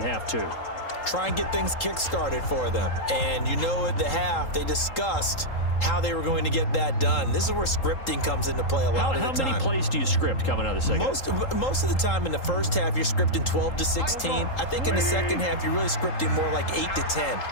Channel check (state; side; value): late; right; 3.8 ms